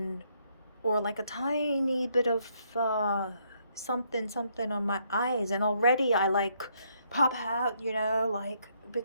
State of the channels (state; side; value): inverted; both; correlation -0.72